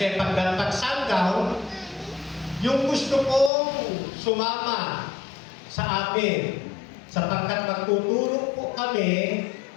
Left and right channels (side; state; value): right; drops out; at 3.5 s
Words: pagdating sundown, yung gusto kong sumama sa amin, sapagkat magtutulong po kami